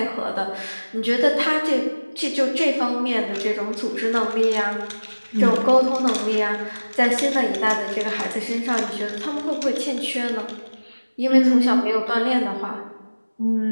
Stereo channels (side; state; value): both; inverted; correlation -1.00